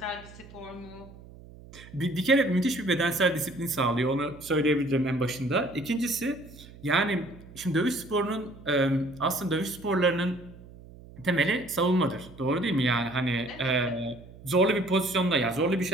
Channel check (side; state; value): right; noise; hum, 19 dB below the sound